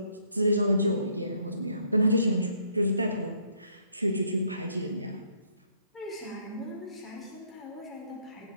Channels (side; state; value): both; inverted; correlation -0.68